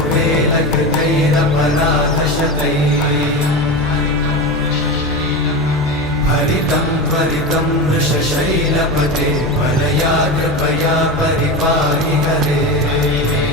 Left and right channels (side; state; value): both; normal; correlation 0.22